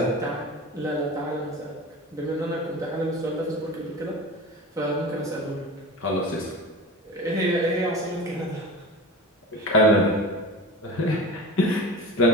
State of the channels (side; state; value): both; normal; correlation 0.32